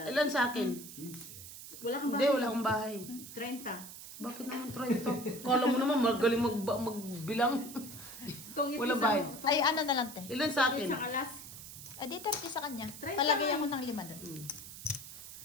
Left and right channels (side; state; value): right; noise; hiss, 13 dB below the sound